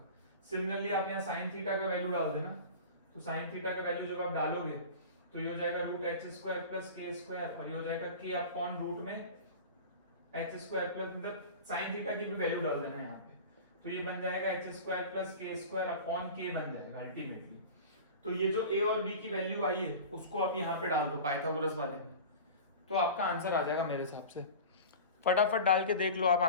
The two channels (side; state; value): both; inverted; correlation -0.35